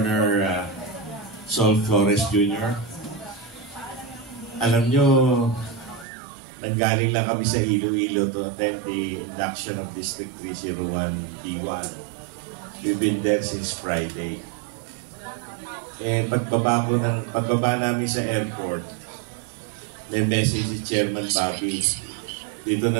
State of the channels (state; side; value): drops out; left; at 6.1 s